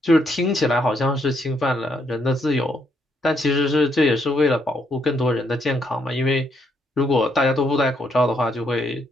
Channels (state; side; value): normal; both; correlation 0.74